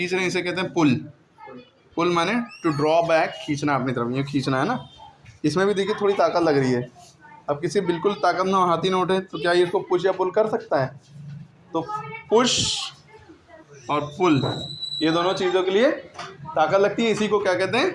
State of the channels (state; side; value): identical; both; correlation 1.00